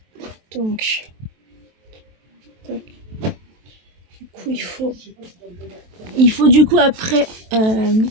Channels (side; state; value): left; late; 23 ms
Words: Donc. Tac. Du coup, il faut du coup après